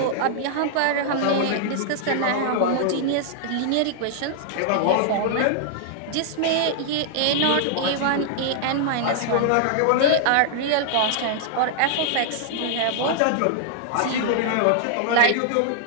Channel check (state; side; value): different; both; correlation -0.01